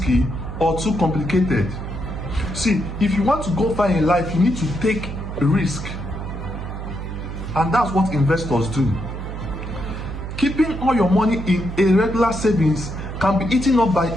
or too complicated. See, if you want to go far in life, you need to take a risk. And that's what investors do. Keeping all your money in a regular savings can be eaten up by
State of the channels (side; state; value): right; noise; hum, 7 dB below the sound